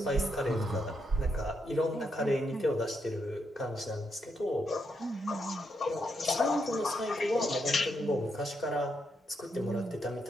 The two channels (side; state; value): both; normal; correlation 0.79